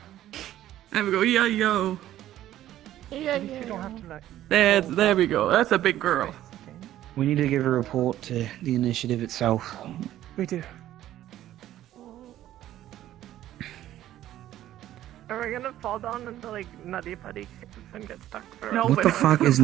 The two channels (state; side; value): quieter; left; 13.1 dB